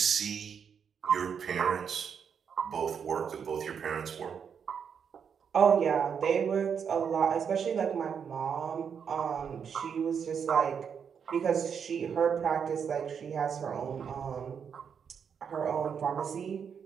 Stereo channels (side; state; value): left; quieter; 7.1 dB